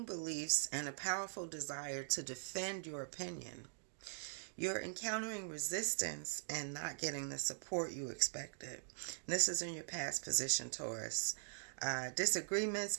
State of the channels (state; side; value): silent; left; digital silence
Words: beliefs and a powerful desire to defend your opinion. You're encountering resistance and not getting the support you expected. This is in your past position, Taurus.